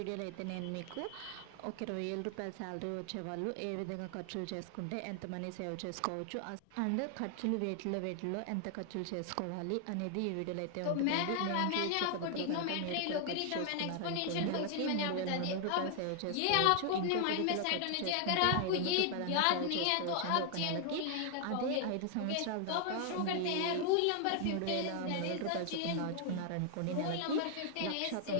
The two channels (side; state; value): both; different; correlation 0.00